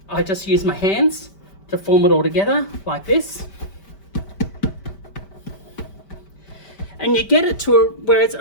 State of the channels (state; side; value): late; right; 5.1 ms